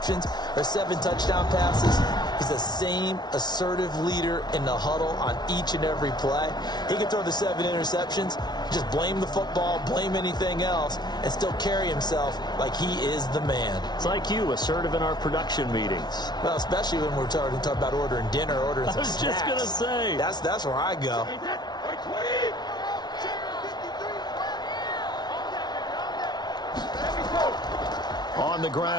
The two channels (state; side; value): late; right; 0.20 ms